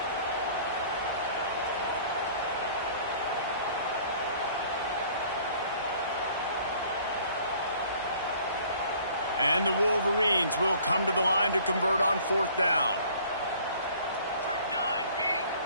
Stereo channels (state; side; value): inverted; both; correlation -0.53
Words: And the Wolverines will come to the line to convert on 4th down.